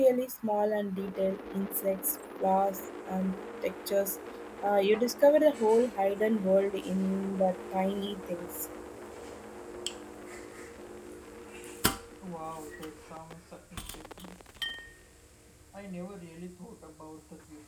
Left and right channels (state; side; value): identical; both; correlation 1.00